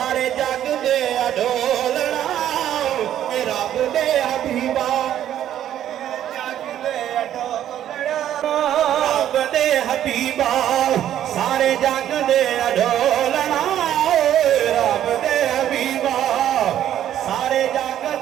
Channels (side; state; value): left; quieter; 11.2 dB